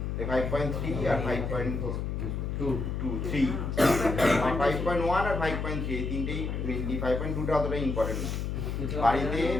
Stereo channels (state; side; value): noise; left; hum, 2 dB below the sound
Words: 5.3 আর 5.3, 5.1 আর 5.3 এই তিনটেই মেনলি। 5.2টা অতটা ইম্পর্টেন্ট না। বাড়িতে